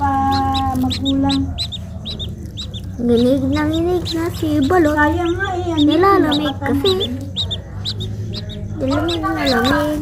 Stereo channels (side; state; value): both; identical; correlation 1.00